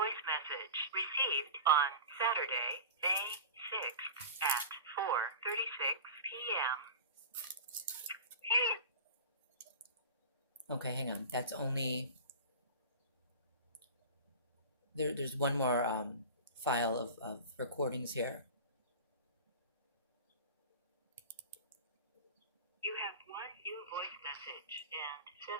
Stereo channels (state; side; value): inverted; both; correlation -0.32